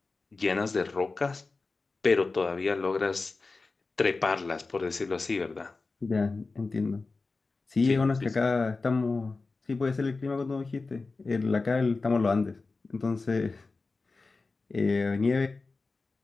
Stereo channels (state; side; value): quieter; right; 3.8 dB